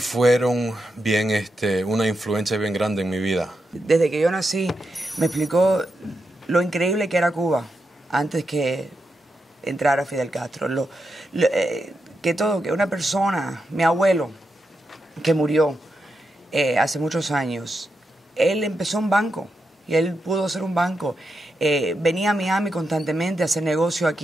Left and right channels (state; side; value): normal; both; correlation 0.86